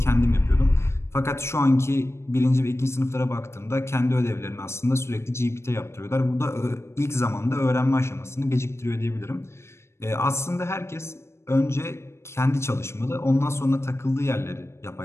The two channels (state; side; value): late; right; 0.13 ms